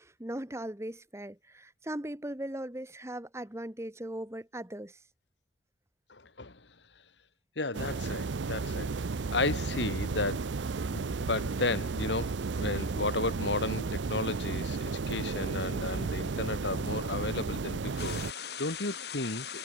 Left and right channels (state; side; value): normal; both; correlation 0.19